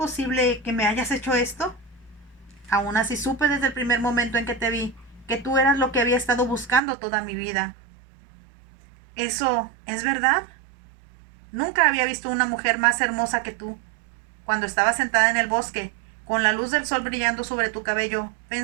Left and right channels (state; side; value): drops out; left; at 6.8 s